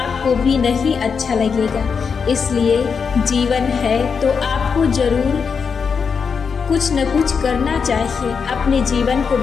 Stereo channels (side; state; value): right; quieter; 5.9 dB